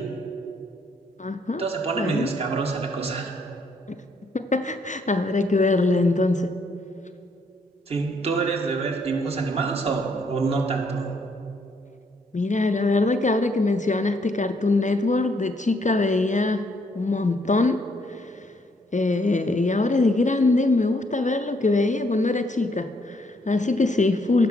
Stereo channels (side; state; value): both; normal; correlation 0.70